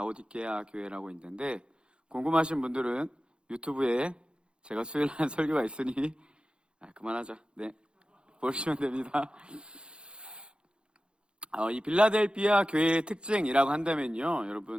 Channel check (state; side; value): late; left; 0.053 ms